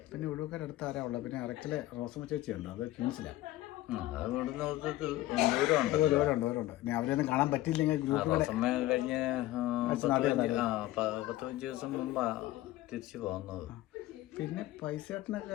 പിന്നെ ഒഴുക്കാരടുത്ത് ആരാ ഉള്ളത്? പിന്നെ അറക്കലെ റോസമ്മ ചേച്ചിയുണ്ട്, അത് ക്യൂൻസിലാണ്. ദൂരമുണ്ട്. ഇനി അവരെയൊന്നും കാണാൻ പറ്റിയില്ലെങ്കിൽ ഗ്രൂപ്പിൽ കഴിഞ്ഞ 10-15 ദിവസം മുമ്പാ തിരിച്ചു പോകുന്നത്. പിന്നെ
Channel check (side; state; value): right; quieter; 16.0 dB